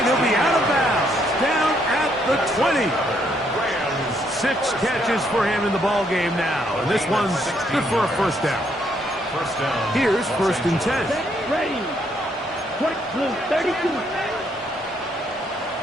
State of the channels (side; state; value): both; normal; correlation 0.72